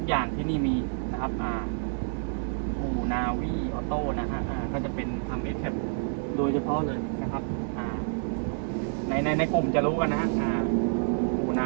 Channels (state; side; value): silent; left; 59 dB below the other